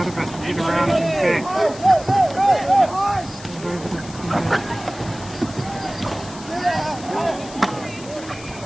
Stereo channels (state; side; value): noise; left; hiss, 17 dB below the sound